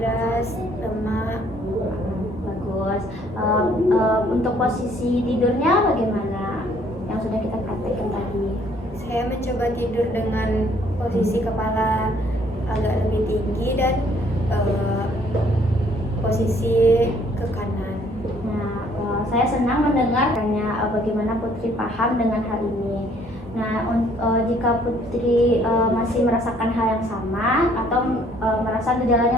lemak. Bagus. Untuk posisi tidurnya bagaimana? Yang sudah kita praktekkan tadi. Saya mencoba tidur dengan posisi kepala agak lebih tinggi dan posisi ke kanan. Nah, saya senang mendengarkannya bagaimana Putri paham dengan hal ini. Nah, jika Putri masih merasakan hal yang sama atau merasa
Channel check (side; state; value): both; normal; correlation 0.62